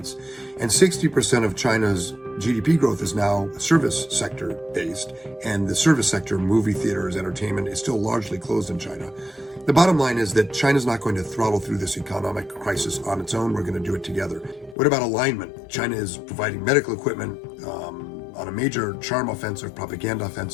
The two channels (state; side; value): drops out; right; at 14.8 s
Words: And 60% of China's GDP growth is now service sector based. And the service sector, movie theaters, entertainment, is still largely closed in China. The bottom line is that China's not going to throttle through this economic crisis on its own. We're going to do it together. What about alignment? China is providing medical equipment on a major charm offensive, propaganda